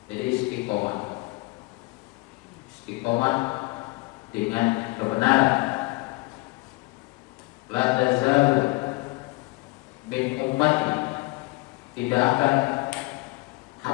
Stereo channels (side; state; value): right; quieter; 24.6 dB